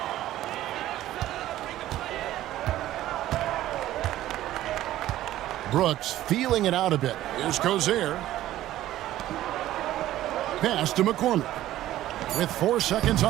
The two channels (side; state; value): left; quieter; 14.1 dB